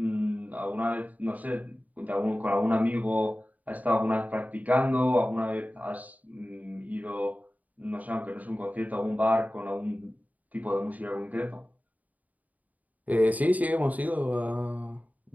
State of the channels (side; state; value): left; late; 0.075 ms